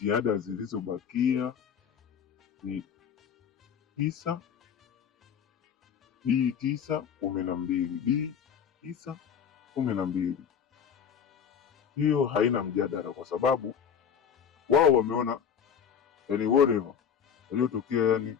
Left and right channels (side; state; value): right; quieter; 7.7 dB